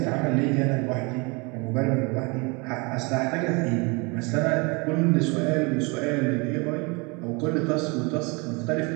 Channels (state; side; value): quieter; left; 29.1 dB